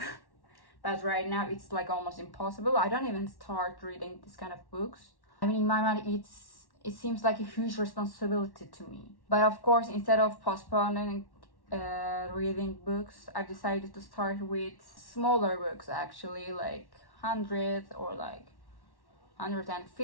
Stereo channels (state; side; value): late; right; 1.1 ms